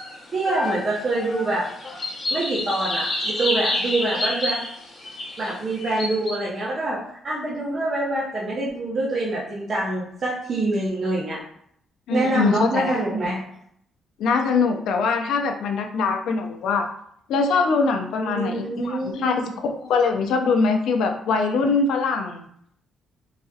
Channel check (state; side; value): normal; both; correlation 0.65